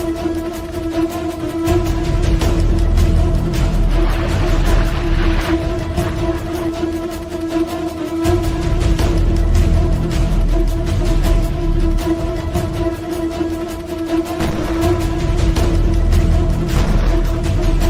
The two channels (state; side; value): identical; both; correlation 1.00